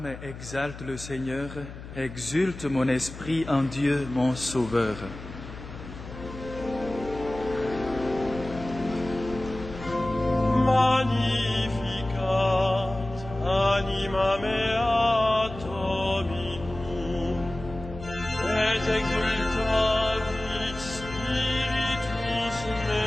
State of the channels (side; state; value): left; noise; hum, 13 dB below the sound